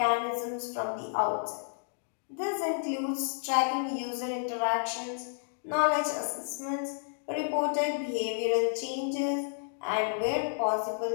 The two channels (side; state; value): right; silent; digital silence